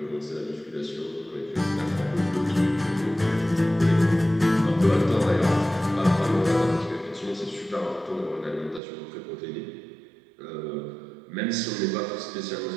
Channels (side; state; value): left; drops out; at 8.8 s